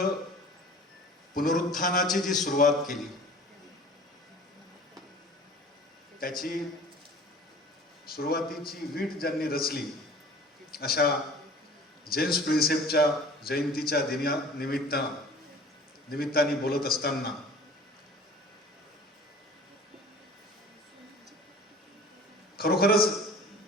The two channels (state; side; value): normal; both; correlation 0.45